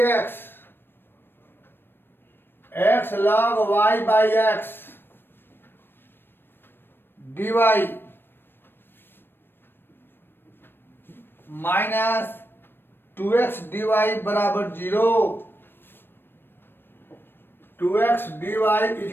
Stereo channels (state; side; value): late; right; 0.099 ms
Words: x, x log Y by x D Y minus 2x D y बराबर 0, 2x D Y